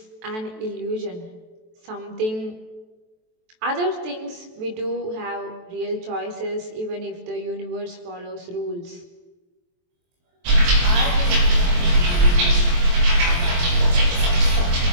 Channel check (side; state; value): left; late; 23 ms